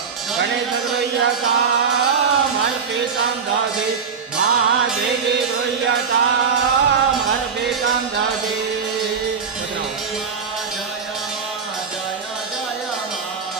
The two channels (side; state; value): left; quieter; 6.0 dB